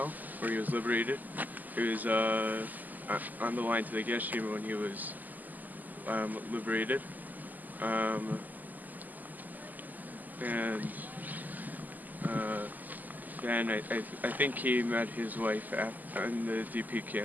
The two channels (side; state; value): left; late; 0.083 ms